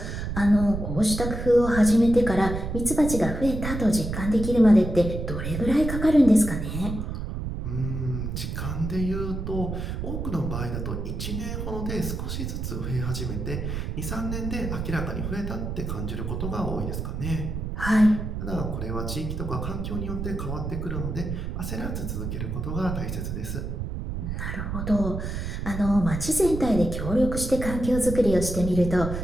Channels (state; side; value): noise; right; rumble, 4 dB below the sound